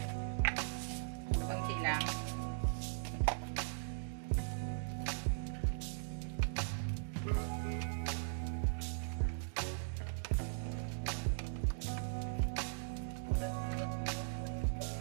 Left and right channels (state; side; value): silent; left; digital silence